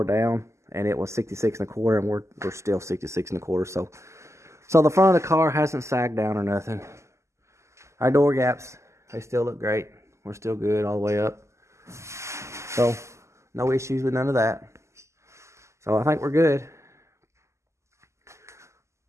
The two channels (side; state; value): left; late; 0.13 ms